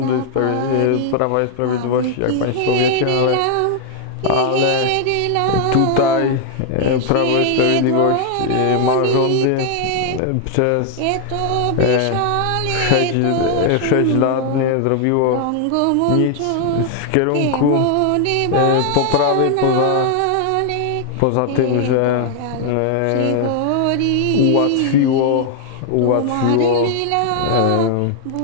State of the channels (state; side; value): different; both; correlation 0.00